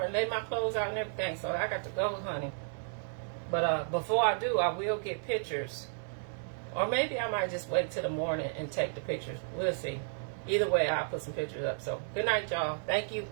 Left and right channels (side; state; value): left; silent; digital silence